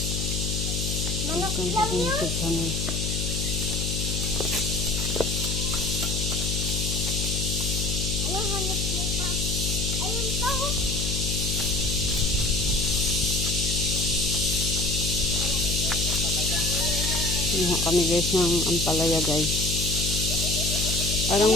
Manok Welcome lang to yun? YouTube channel. Anong hanap mo pa? Ayun pa oh. Iha kami guys ng ampalaya guys.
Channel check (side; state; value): left; noise; hum, 1 dB below the sound